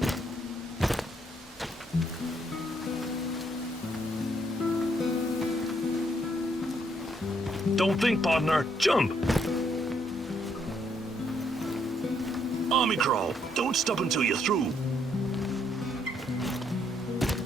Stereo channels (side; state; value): both; normal; correlation 0.72